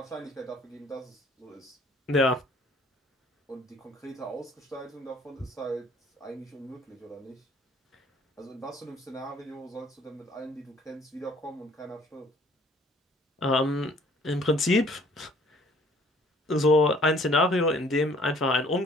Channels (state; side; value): normal; both; correlation 0.57